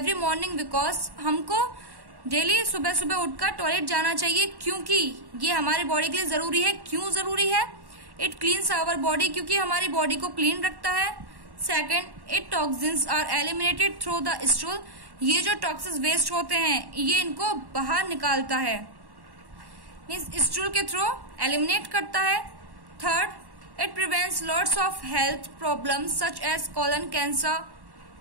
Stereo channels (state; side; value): late; left; 1.1 ms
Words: morning because हमको डेली सुबह सुबह उठकर टॉयलेट जाना चाहिए, क्योंकि ये हमारे बॉडी के लिए जरूरी है। क्यों जरूरी है? इट क्लीन्स आवर बॉडी, क्योंकि हमारी बॉडी को क्लीन रखता है। Second, it toxins are eliminated through the stool. ये जो टॉक्सिक वेस्ट होते हैं ये इनको बाहर निकालता है, मीन्स स्टूल के थ्रू एलिमिनेट करता है। Third, it prevents lots of health problems such as colon cancer,